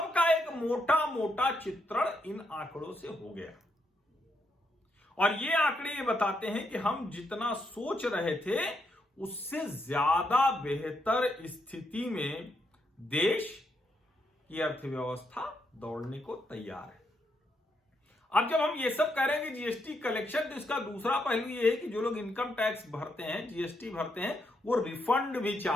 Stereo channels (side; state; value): both; normal; correlation 0.79